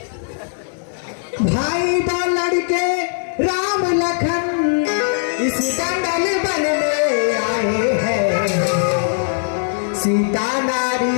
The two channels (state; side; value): silent; right; 66 dB below the other